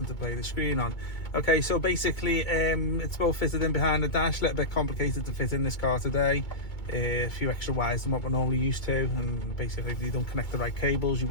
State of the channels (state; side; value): late; right; 2.2 ms